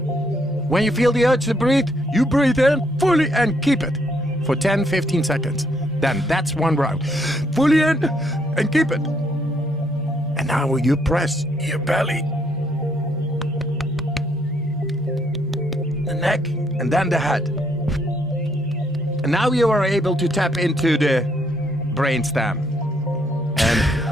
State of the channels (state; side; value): normal; both; correlation 0.71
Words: When you feel the urge to breathe, you breathe in fully and keep it for 10-15 seconds. Then that's one round. Fully in and keep it. And now you press your belly, the neck, and then the head. And now you are able to tap into the brainstem. And